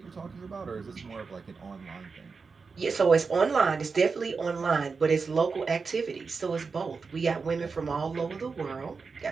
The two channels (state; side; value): quieter; left; 4.8 dB